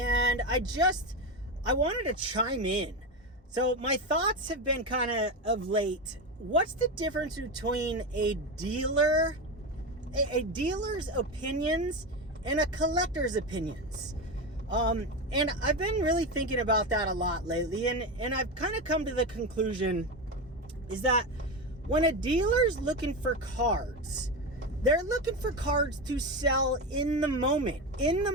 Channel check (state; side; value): normal; both; correlation 0.17